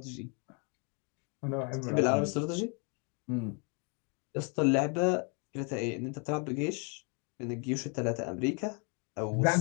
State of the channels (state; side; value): quieter; right; 36.1 dB